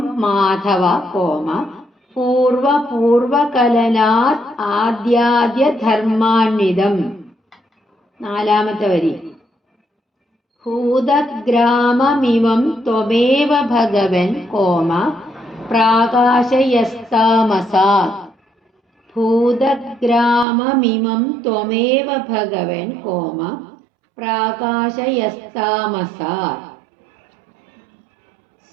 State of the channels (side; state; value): left; drops out; at 20.5 s